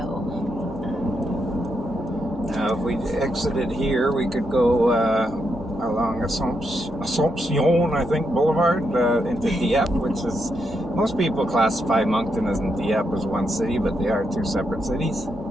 Now, if we exited here, we could go along Assomption, I think, Boulevard into Dieppe, which is, most people classify Moncton and Dieppe as one city, but they are two separate cities.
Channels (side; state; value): both; normal; correlation 0.81